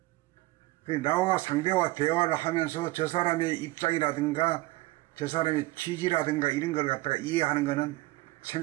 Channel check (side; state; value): left; quieter; 20.1 dB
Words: 나와 상대와 대화를 하면서 저 사람의 입장이라든가 저 사람의 취지라든가 이런 걸 갖다가 이해하는 거는